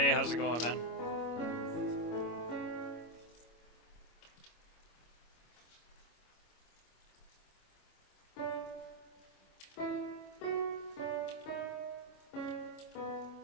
how's it going, man?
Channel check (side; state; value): right; late; 25 ms